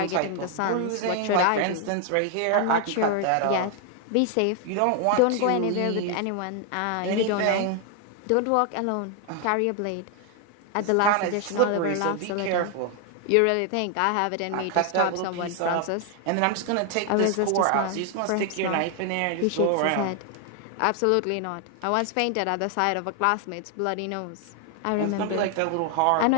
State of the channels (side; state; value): both; different; correlation 0.00